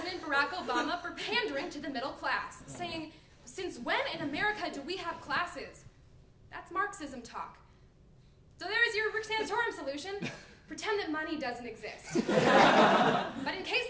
Barack Obama for pandering to the middle class, saying, "Since when in America do we have classes? That's Marxism talk." So there's your Rick Santorum solution. Pretend that money doesn't exist. But in case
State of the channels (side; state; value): both; identical; correlation 1.00